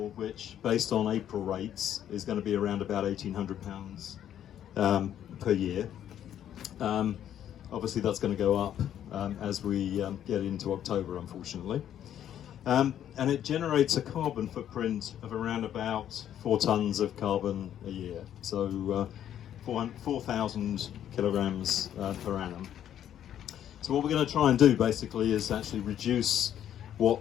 which, based on April rates, is going to be around about £1,800 per year. Obviously that's going to go up as we get into October, unfortunately. And it generates a carbon footprint of around about 4 tonnes of carbon a year, so 4,000 kilograms per annum. So what we're going to try and do basically is actually reduce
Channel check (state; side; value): quieter; right; 10.5 dB